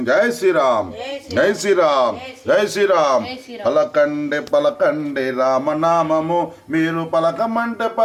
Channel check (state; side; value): identical; both; correlation 1.00